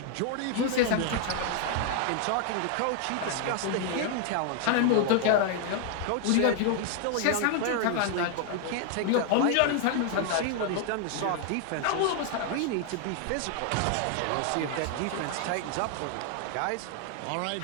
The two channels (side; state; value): both; different; correlation 0.00